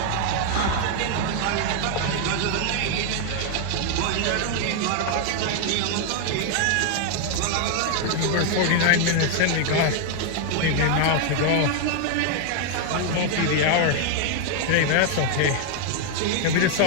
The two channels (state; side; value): different; both; correlation 0.00